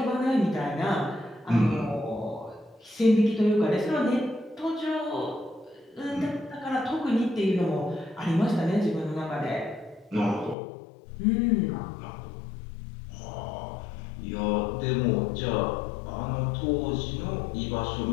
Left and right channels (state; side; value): drops out; right; at 10.6 s